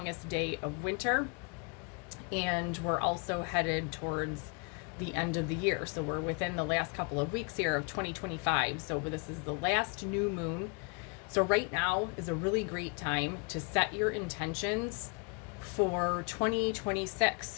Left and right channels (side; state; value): right; quieter; 34.7 dB